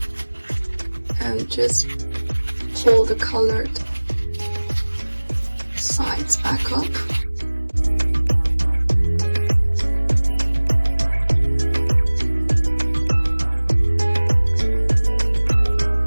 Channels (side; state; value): both; inverted; correlation -1.00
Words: And just pull the colored sides back up.